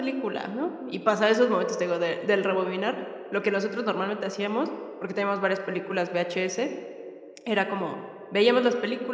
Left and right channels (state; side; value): identical; both; correlation 1.00